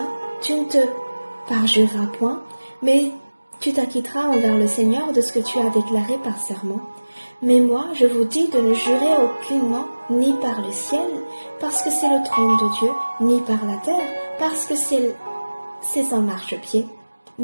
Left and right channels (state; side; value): inverted; both; correlation -1.00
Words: tu ne te parjureras point, mais tu t'acquitteras envers le Seigneur de ce que tu as déclaré par serment. Mais moi, je vous dis de ne jurer aucunement, ni par le ciel, parce que c'est le trône de Dieu, ni par la terre, parce que c'est son marchepied,